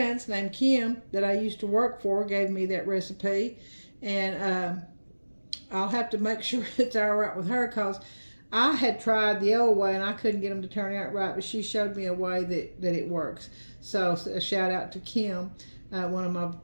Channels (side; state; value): both; inverted; correlation -1.00